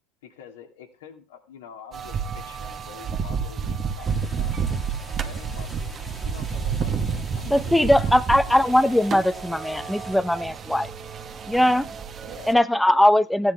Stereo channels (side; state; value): both; normal; correlation 0.89